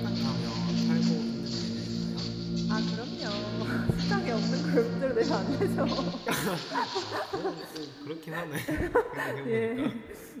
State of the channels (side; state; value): both; identical; correlation 1.00